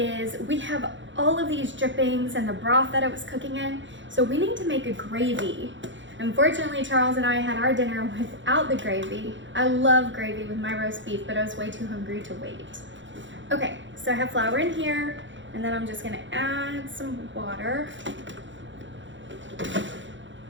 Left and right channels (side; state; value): left; late; 0.54 ms